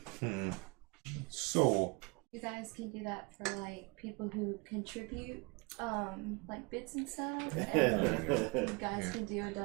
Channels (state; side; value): quieter; left; 27.9 dB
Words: So, You guys can do that for like people who contribute, like bits and stuff. And you guys can do a